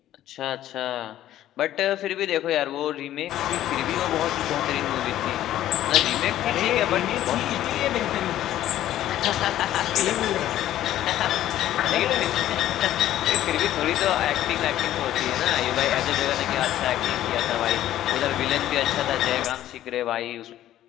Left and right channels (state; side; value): quieter; right; 12.9 dB